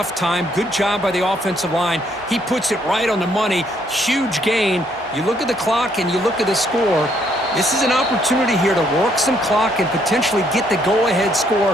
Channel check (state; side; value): normal; both; correlation 0.69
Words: time. Good job by the offensive line. He puts it right on the money. Huge gain. You look at the clock and you look at the score. This is an opportunity here to work some clock and potentially get the go-ahead